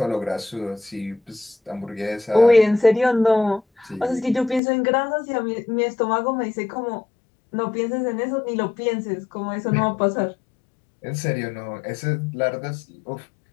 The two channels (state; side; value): drops out; right; at 4.6 s